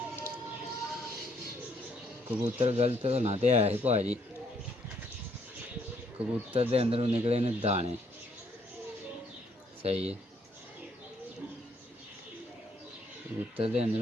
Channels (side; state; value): both; normal; correlation 0.69